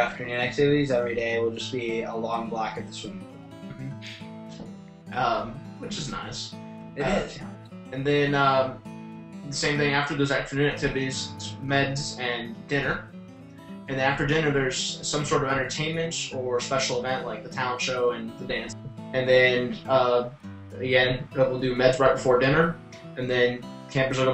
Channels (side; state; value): both; identical; correlation 1.00